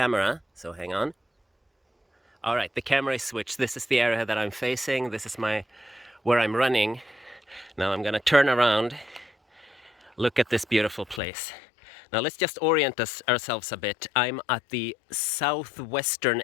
so hang on. Alright, the camera is switched. This is the area that I'm facing, this is where I'm running. Now I'm gonna turn around, look at this beautiful place. Now let's just orient ourselves a bit. I'm at the southwestern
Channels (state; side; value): drops out; right; at 11.2 s